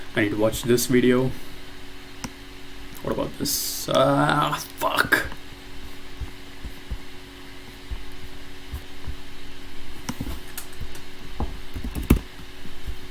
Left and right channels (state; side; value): identical; both; correlation 1.00